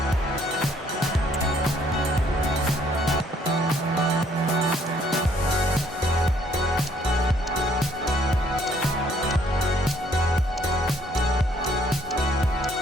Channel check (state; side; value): normal; both; correlation 0.65